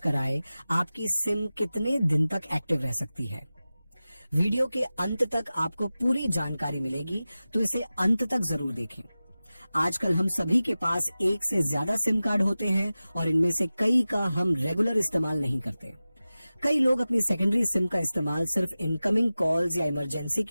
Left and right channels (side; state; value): both; inverted; correlation -0.96